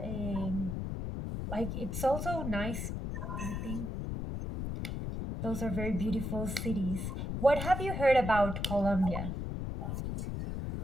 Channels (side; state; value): left; noise; rumble, 4 dB below the sound